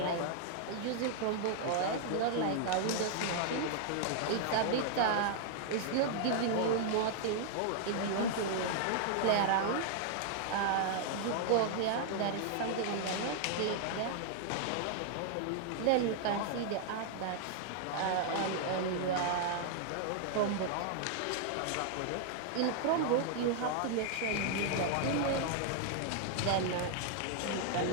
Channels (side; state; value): both; different; correlation 0.00